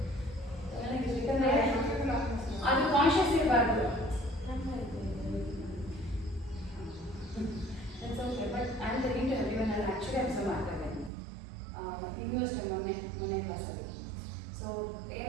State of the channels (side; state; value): left; drops out; at 11.1 s